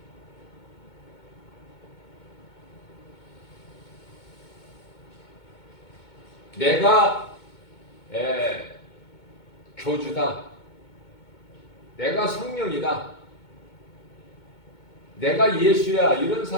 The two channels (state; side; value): late; right; 2.2 ms